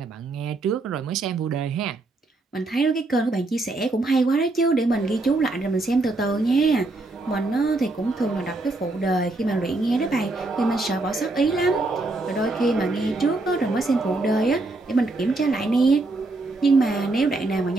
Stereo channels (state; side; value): quieter; left; 3.0 dB